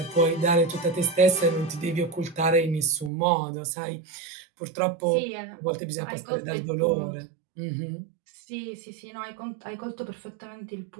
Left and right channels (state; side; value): drops out; left; at 3.1 s